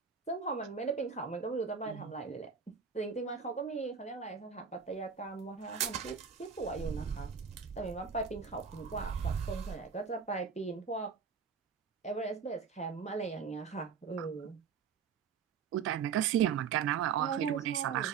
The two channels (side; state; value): left; quieter; 6.4 dB